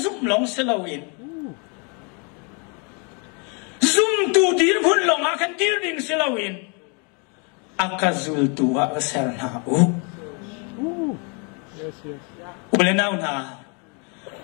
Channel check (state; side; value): quieter; right; 34.9 dB